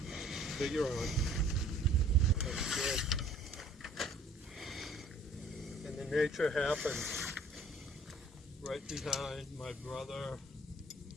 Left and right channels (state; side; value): normal; both; correlation 0.54